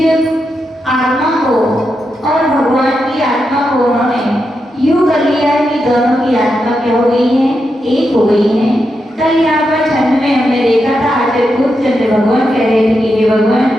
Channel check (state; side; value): normal; both; correlation 0.86